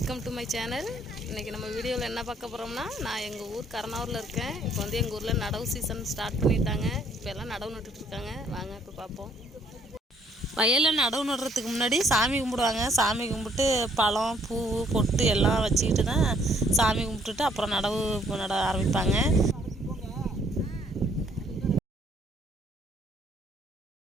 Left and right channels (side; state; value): both; normal; correlation 0.64